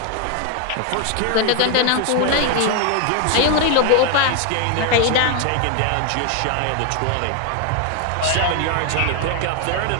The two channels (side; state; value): both; different; correlation 0.01